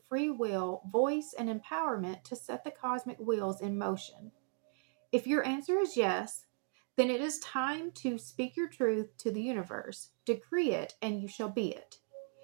free will, voice, and empowerment to set the cosmic wheels in motion? If your answer is yes, then it is time to speak your truth to the universe. Decree it, and you shall be it.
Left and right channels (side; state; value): left; silent; 53 dB below the other